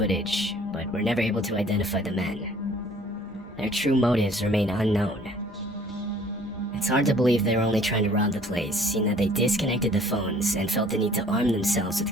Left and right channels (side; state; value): both; normal; correlation 0.55